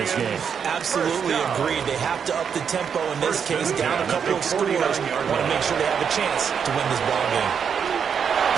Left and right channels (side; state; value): left; quieter; 7.1 dB